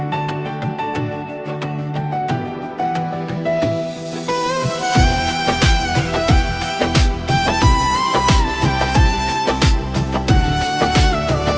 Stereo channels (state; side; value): identical; both; correlation 1.00